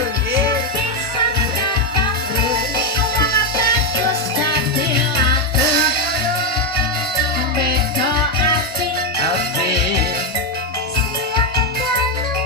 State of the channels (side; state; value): both; normal; correlation 0.05